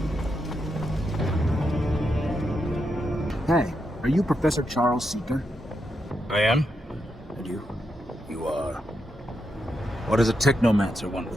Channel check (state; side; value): normal; both; correlation 0.84